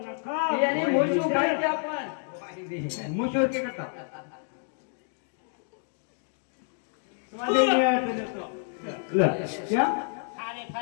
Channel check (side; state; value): right; silent; 59 dB below the other